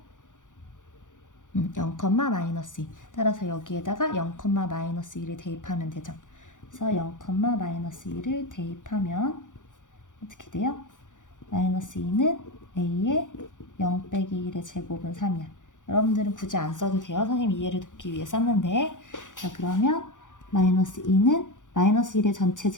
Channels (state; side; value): late; right; 0.87 ms